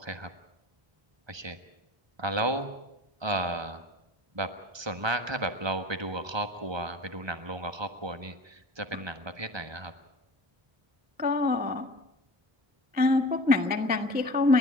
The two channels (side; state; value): left; late; 1.2 ms